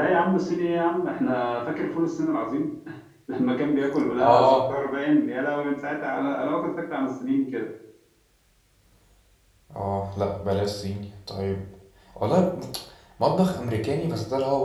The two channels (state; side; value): identical; both; correlation 1.00